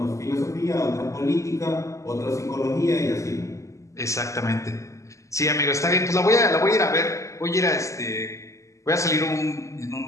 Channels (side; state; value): right; late; 0.15 ms